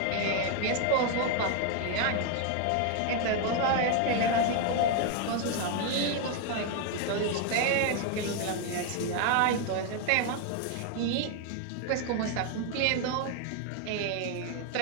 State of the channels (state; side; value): different; both; correlation 0.01